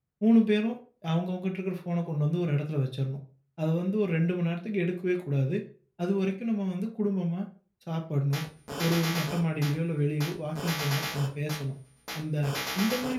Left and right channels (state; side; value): identical; both; correlation 1.00